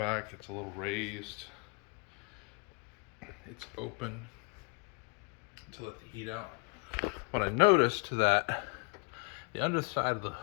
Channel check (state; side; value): quieter; right; 33.1 dB